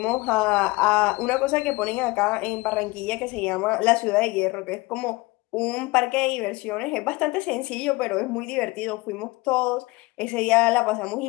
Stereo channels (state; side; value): quieter; right; 22.9 dB